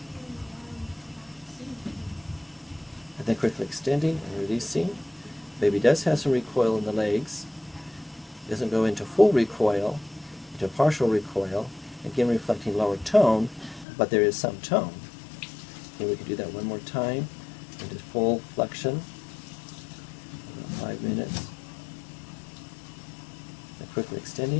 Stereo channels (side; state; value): right; drops out; at 13.9 s